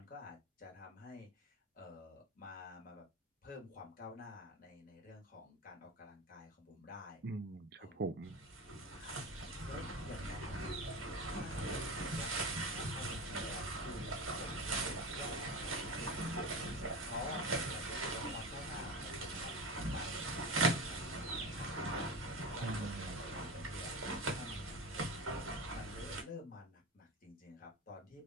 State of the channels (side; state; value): both; normal; correlation 0.25